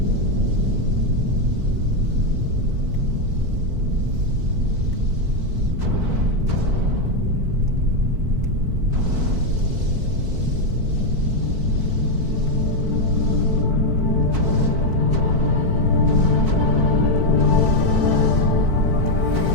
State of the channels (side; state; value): left; late; 4.5 ms